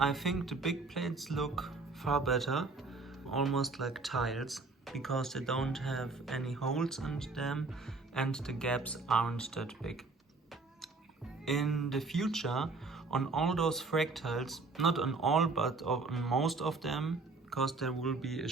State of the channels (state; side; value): quieter; left; 3.9 dB